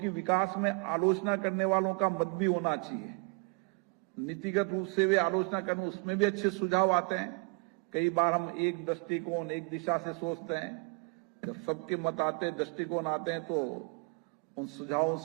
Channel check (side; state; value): left; quieter; 33.5 dB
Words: विकास में आलोचना करने वालों का मत भी होना चाहिए। नीतिगत रूप से वे आलोचना करने, उसमें भी अच्छे सुझाव आते हैं। कई बार हम एक दृष्टिकोण, एक दिशा से सोचते हैं, जब सबके मत आते हैं, दृष्टिकोण आते हैं, तो उन सुझावों